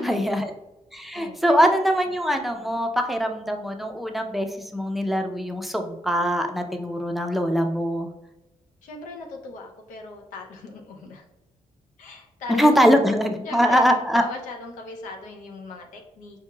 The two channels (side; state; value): both; normal; correlation 0.83